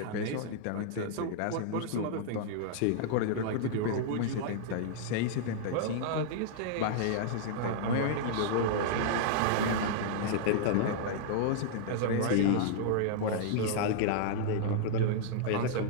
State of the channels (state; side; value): different; both; correlation -0.02